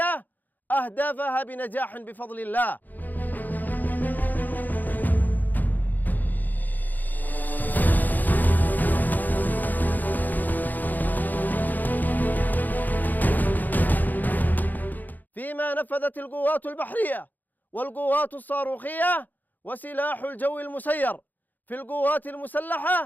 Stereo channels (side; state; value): right; late; 0.085 ms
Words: أهدافها بنجاح بفضل الله. فيما نفذت القوات البحرية والقوات الصاروخية وسلاح الجو المسير في القوات